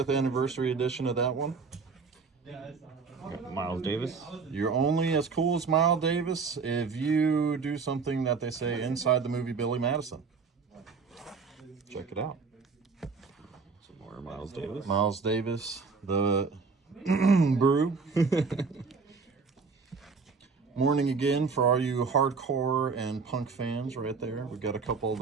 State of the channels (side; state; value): left; quieter; 4.9 dB